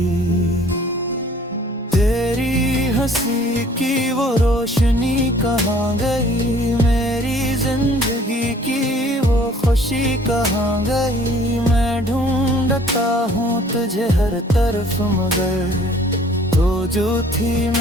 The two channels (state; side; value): normal; both; correlation 0.55